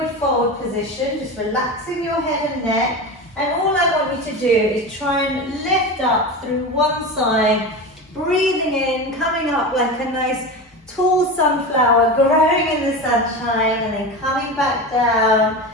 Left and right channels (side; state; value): both; normal; correlation 0.25